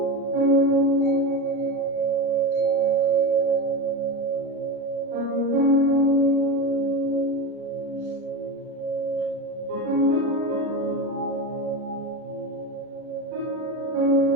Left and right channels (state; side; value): late; left; 37 ms